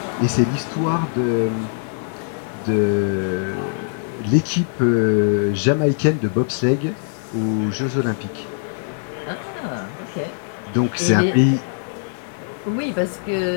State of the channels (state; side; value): silent; right; digital silence